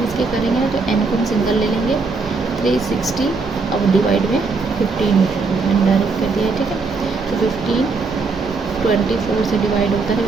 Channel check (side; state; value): left; quieter; 4.2 dB